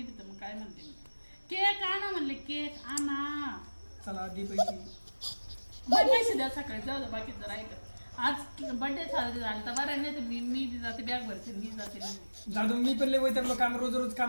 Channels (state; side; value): inverted; both; correlation -1.00